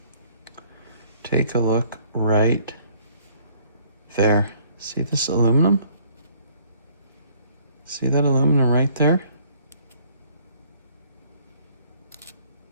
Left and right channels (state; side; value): inverted; both; correlation -0.61